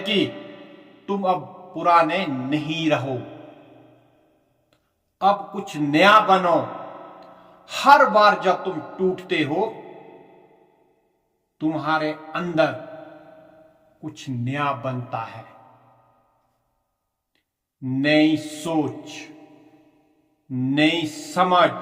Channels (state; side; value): identical; both; correlation 1.00